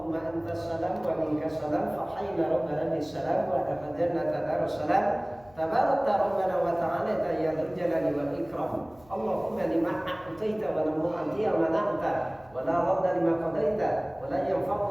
antas salam wa minkas salam fa hayyina rabbana bis salam wa adkhilna jannata darussalam tabarakta rabbana wa ta'ala ya dzal jalali wal ikram. Allahumma lima a'taita wa lam tu'ti wa mana'ta wa la radda lima qadaita wa la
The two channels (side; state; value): left; noise; hum, 27 dB below the sound